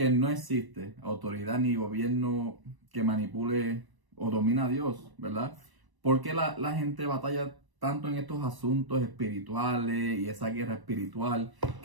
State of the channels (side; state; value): left; late; 1.0 ms